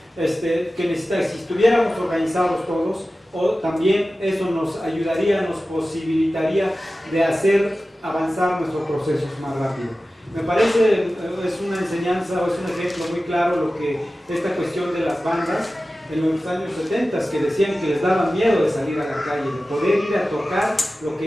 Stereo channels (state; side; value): normal; both; correlation 0.95